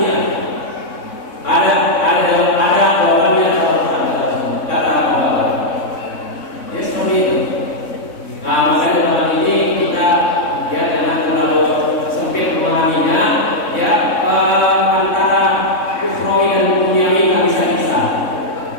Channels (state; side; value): late; right; 3.6 ms